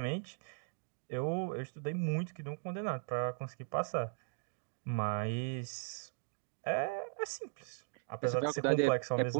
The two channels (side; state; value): left; silent; digital silence